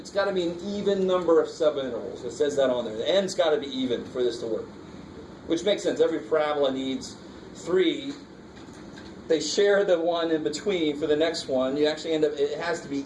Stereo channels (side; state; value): both; identical; correlation 1.00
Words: got to be an even number of subintervals. It says that on there. The n's got to be even for this to work. Which makes sense. Every parabola needs 3. They share the one in between for the next one. You actually end up, it has to be